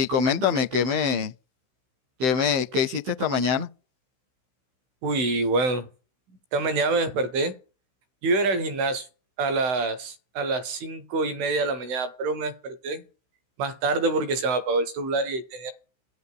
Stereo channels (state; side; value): late; left; 16 ms